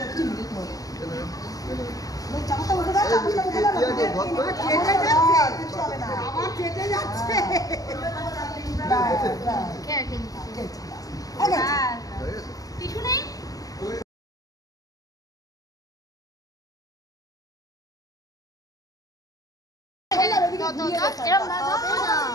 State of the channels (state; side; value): late; right; 0.17 ms